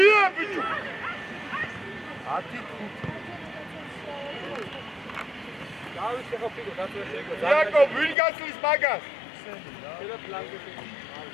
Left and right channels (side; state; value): right; drops out; at 8.2 s